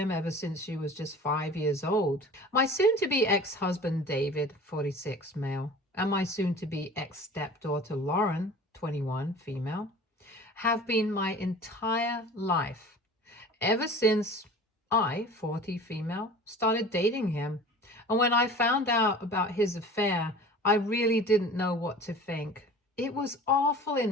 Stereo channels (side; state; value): both; normal; correlation 0.41